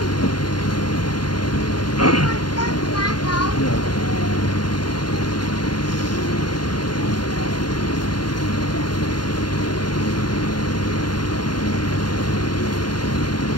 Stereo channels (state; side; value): late; right; 0.71 ms